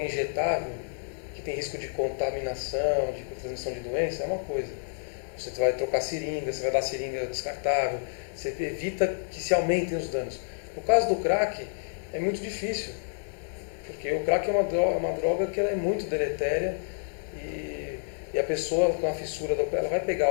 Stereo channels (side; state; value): right; silent; digital silence